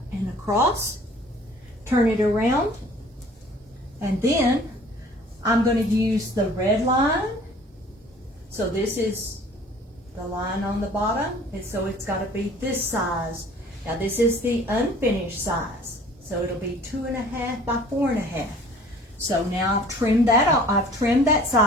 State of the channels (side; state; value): both; normal; correlation 0.50